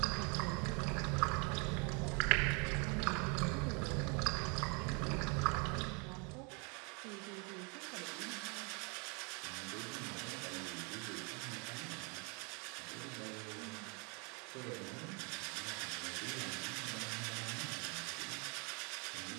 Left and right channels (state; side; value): quieter; left; 33.3 dB